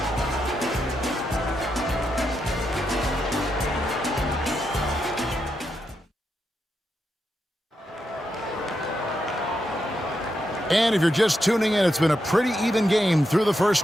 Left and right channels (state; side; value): normal; both; correlation 0.84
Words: And if you're just tuning in, it's been a pretty even game through the